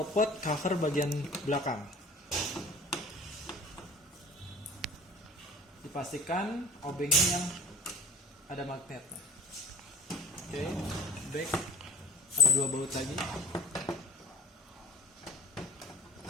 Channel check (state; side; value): normal; both; correlation 0.41